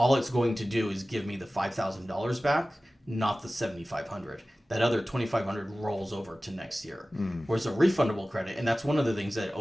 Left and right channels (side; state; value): both; normal; correlation 0.97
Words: it's going to do is give me the $5,000 back, not the $7,500. That other $2,500 rolls over to next year. Whereas a refundable credit, and that's one of the things that